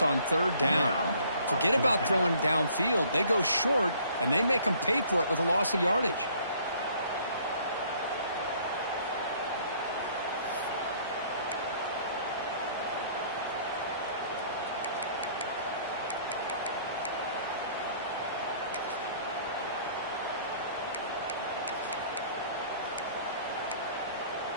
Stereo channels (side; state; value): both; inverted; correlation -0.58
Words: on third down. Forget about throwing downfield. They go short, and they make them pay for it with a loss of yardage.